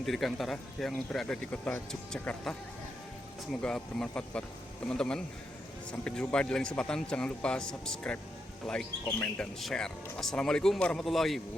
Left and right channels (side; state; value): both; normal; correlation 0.83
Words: Dirgantara yang berada di kota Yogyakarta. Semoga bermanfaat buat teman-teman. Sampai jumpa di lain kesempatan. Jangan lupa subscribe, like, komen, dan share. Assalamualaikum warahmatullahi